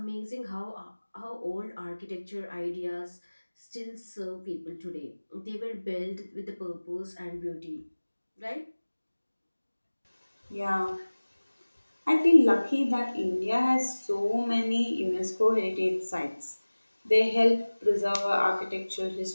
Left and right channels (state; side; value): inverted; both; correlation -1.00